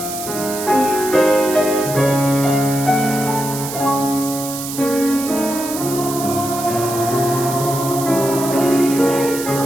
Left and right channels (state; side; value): noise; right; hiss, 8 dB below the sound